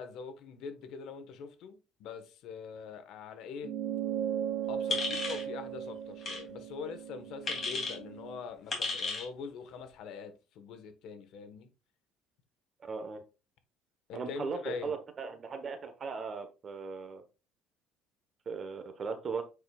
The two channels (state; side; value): normal; both; correlation 0.56